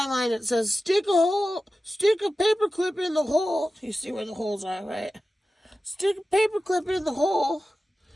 it says stick a paper clip in the hole. You see where the holes are, right? Stick a paper clip in the hole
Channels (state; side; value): normal; both; correlation 0.94